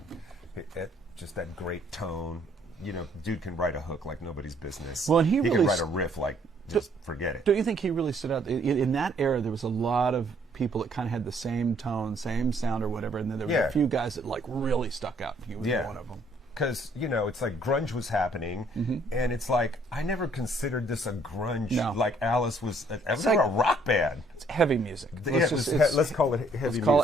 just that great tone. Dude can write a hook like nobody's business. Well, and he can really write a riff like just forget it. Don't you think he really stood out? In that era, there was a lot of people that kind of had the same tone, same sound or whatever, and then there were a few guys that like really stuck out. He was one of them. Because, it's like grunge was happening, and it's like, I never considered this a grunge. No. Like Alice was, It's like like a rock band. It's heavy music. Let's call it heavy music. Let's call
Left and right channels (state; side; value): normal; both; correlation 0.65